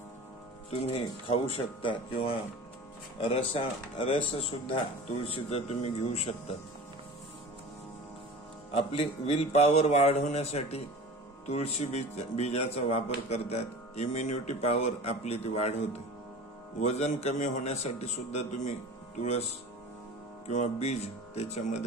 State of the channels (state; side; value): normal; both; correlation 0.37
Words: तुम्ही खाऊ शकता किंवा रस सुद्धा तुळशीचा तुम्ही घेऊ शकता. आपली विल पॉवर वाढवण्यासाठी तुळशी बीजाचा वापर करतात. इम्युनिटी पॉवर आपली ती वाढवते. वजन कमी होण्यासाठी सुद्धा तुम्ही तुळस किंवा बीज